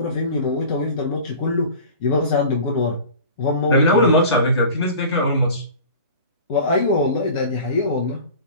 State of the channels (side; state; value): both; inverted; correlation -0.39